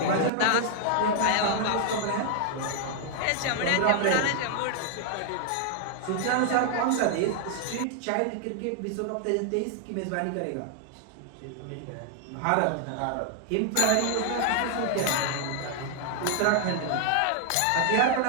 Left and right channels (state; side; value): different; both; correlation 0.00